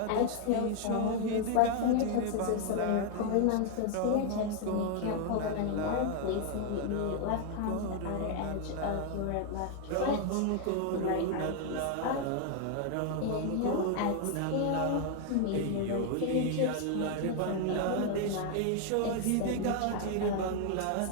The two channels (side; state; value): both; different; correlation 0.00